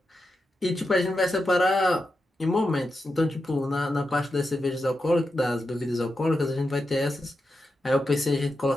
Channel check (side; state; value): both; normal; correlation 0.88